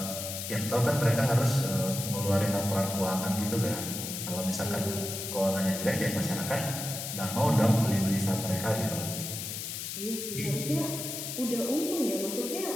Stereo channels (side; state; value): left; noise; hiss, 6 dB below the sound